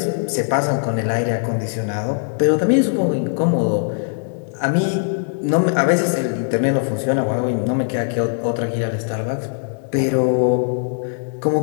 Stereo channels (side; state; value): right; silent; digital silence